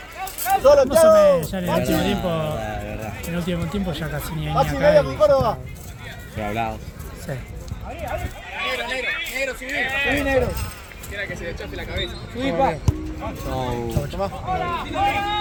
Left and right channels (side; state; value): both; identical; correlation 1.00